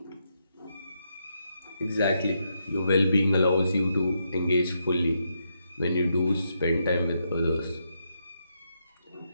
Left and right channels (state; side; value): inverted; both; correlation -0.81